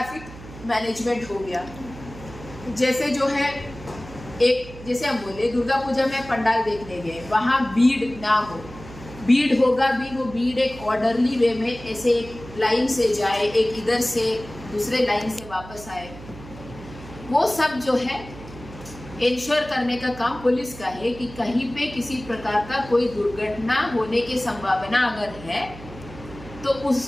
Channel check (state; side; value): noise; right; hum, 16 dB below the sound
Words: मैनेजमेंट हो गया, जैसे जो है एक, जैसे हम बोले दुर्गा पूजा में पंडाल देखने गए, वहाँ भीड़ ना हो, भीड़ होगा भी, वो भीड़ एक ऑर्डरली वे में ऐसे एक लाइन से जाए, एक इधर से दूसरे लाइन से वापस आए, वो सब जो है इंश्योर करने का काम पुलिस का है कि कहीं पे किसी प्रकार का कोई दुर्घटना होने की संभावना अगर है तो